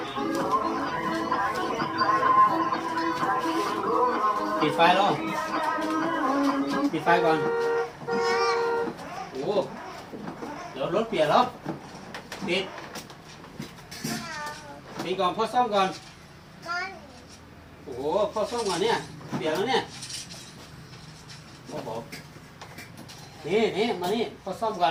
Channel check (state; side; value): identical; both; correlation 1.00